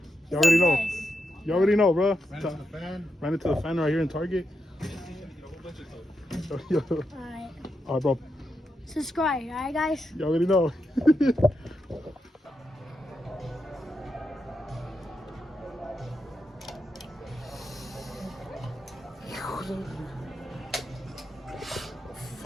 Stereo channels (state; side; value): normal; both; correlation 0.85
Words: You already know. You already know, bro. Ran into the fan right here in Target. Alright. Alright, bro. Subscribe, alright, guys? You already know.